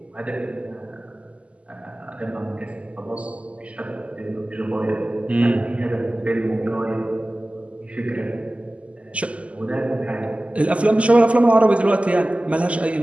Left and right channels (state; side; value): late; left; 0.062 ms